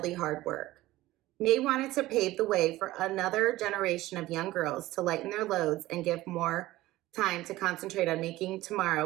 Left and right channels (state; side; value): quieter; left; 17.0 dB